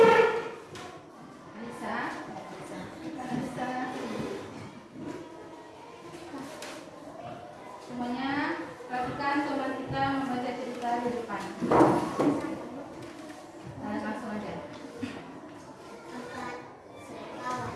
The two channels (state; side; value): identical; both; correlation 1.00